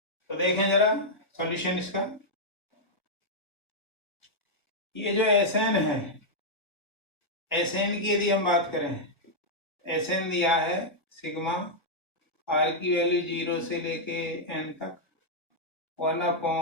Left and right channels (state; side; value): late; right; 1.1 ms